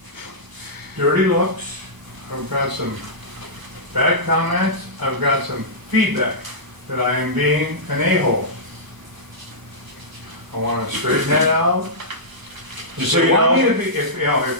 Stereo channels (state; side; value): late; left; 1.0 ms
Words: dirty looks, I've got some bad comments, I've got some feedback that I am being an a-hole. I want to straighten that out. Just If so they you want me know. to be, if